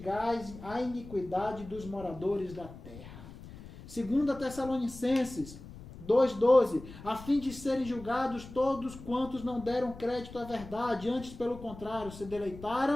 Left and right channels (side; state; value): left; noise; rumble, 15 dB below the sound